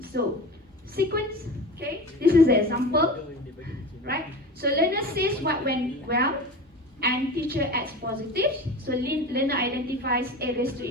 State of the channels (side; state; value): both; normal; correlation 0.32